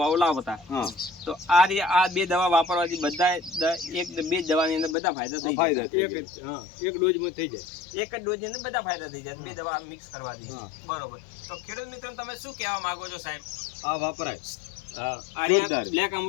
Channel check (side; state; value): right; drops out; at 5.0 s